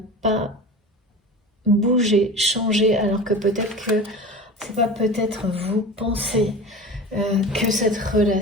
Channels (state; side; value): normal; both; correlation 0.33